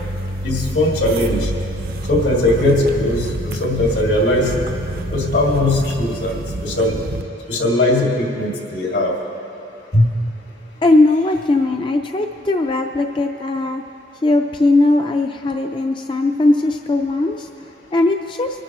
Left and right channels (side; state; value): both; normal; correlation 0.64